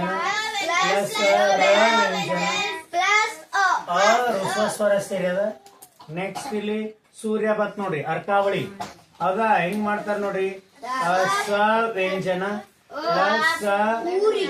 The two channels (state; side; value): identical; both; correlation 1.00